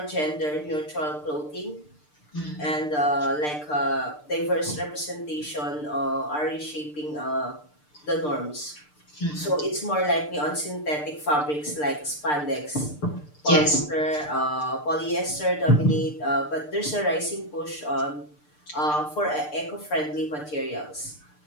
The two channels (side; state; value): right; late; 6.7 ms